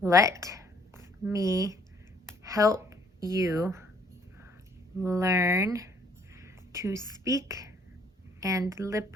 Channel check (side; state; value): both; normal; correlation 0.62